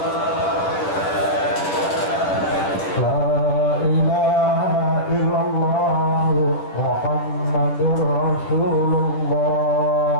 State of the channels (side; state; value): right; late; 10 ms